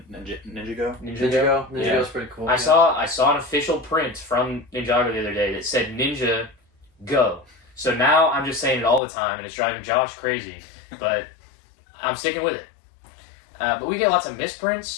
Ninjago. Ninjago's Yeah. pretty cool. I saw an official print from Ninjago the other day that said Ninja Go. So now I'm just saying it all the time, and it's driving Josh crazy. But I'm sticking with it. But we get lots of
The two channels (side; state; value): right; drops out; at 9.0 s